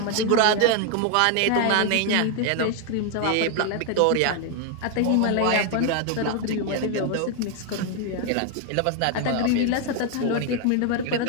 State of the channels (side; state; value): both; different; correlation 0.01